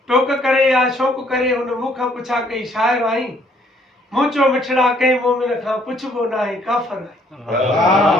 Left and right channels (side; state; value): both; normal; correlation 0.64